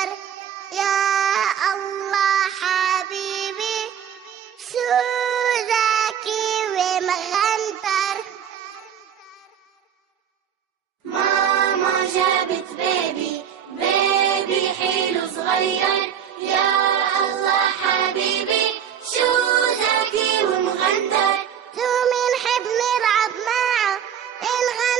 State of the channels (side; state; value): left; quieter; 8.7 dB